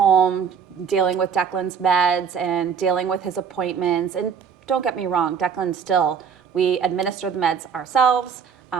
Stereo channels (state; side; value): quieter; left; 6.9 dB